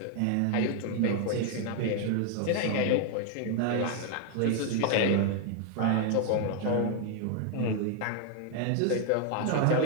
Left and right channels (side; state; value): both; different; correlation 0.00